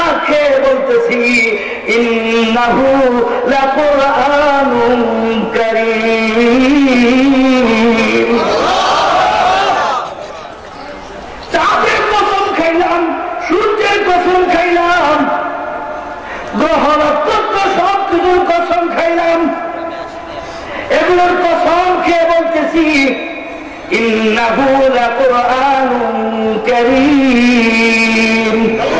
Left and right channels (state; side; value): identical; both; correlation 1.00